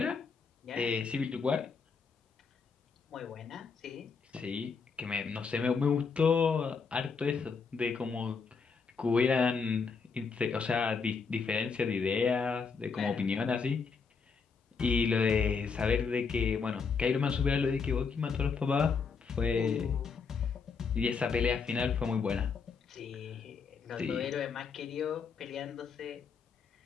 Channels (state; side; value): quieter; right; 5.3 dB